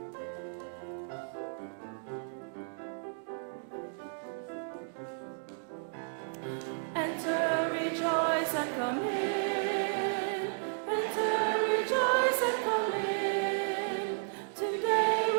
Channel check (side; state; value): left; silent; digital silence